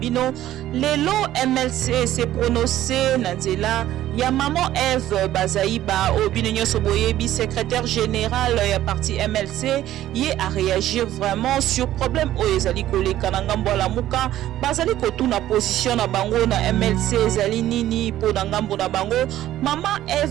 lelo MLC se prononcer na nzela ya maman Eve Bazaiba Obino Nyonso Boyebi, secrétaire général ya parti MLC, y a réagir vraiment sur problème o ezali koleka na ngambo la muka bazali kotuna position na bango na MLC ezali nini po na ngambo na bango mama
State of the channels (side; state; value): left; quieter; 13.4 dB